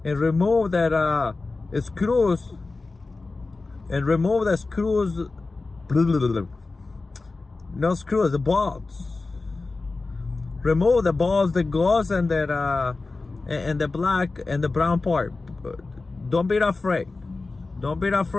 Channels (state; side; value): quieter; right; 3.6 dB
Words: and remove that screws, and remove the screws. No screws, the bolts. Remove the bolts that goes in that and the black and the brown part. Don't be afraid. Don't be